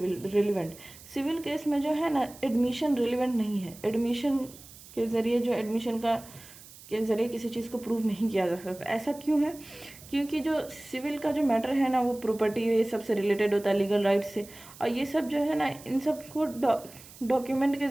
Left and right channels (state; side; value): noise; right; hiss, 19 dB below the sound